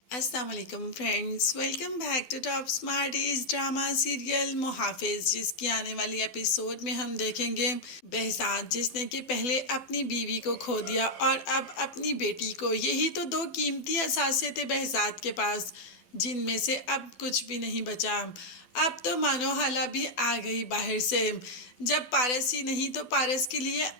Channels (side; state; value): right; late; 12 ms